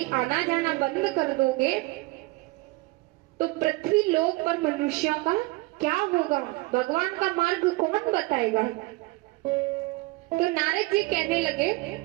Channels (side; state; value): left; quieter; 22.5 dB